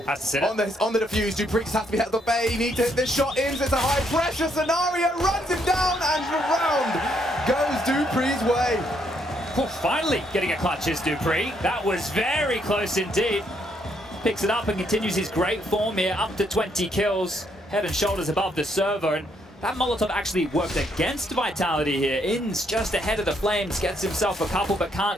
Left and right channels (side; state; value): both; normal; correlation 0.73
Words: the defuse. Dupree has to be held at bay. Need to hit this shot. Ins, it's a high pressure scenario. Runs him down, and around goes Dupree's way. Well, finally getting a clutch is Dupree. That was very close indeed. Picks it up and continues his great form here, up to 20 kills, head and shoulders above the server. And that Molotov actually worked against Vitality here. Ins just ahead of the Flames, gets himself a couple, but